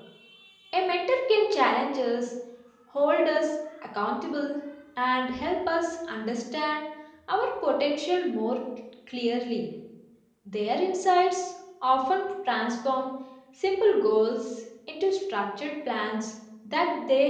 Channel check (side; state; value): both; identical; correlation 1.00